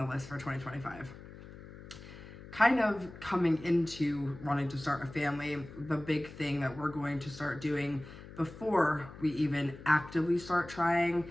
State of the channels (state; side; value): noise; left; hum, 16 dB below the sound